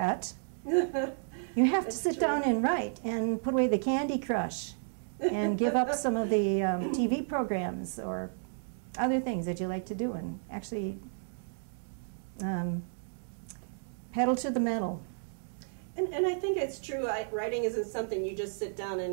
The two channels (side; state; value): left; silent; digital silence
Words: You have to sit down and write and put away the Candy Crush and give up some of the TV programs or other things that you like to do, and actually pedal to the metal. And I think it's true. Writing isn't something you just sit down